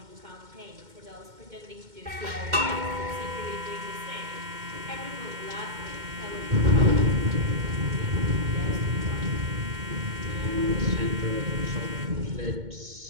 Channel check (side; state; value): left; late; 2.1 ms